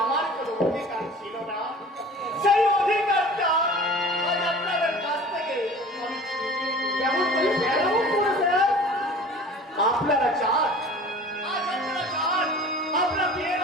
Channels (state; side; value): normal; both; correlation 0.43